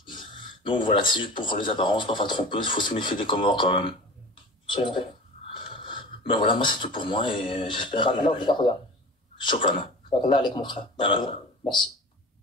Donc voilà, c'est juste pour les apparences, parfois trompeuses, faut se méfier des Comores quand même. C'est vrai. Ben voilà, moi c'est tout pour moi et j'espère Shukran. Là avec mon frère. Ah, Merci.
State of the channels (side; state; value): both; normal; correlation 0.37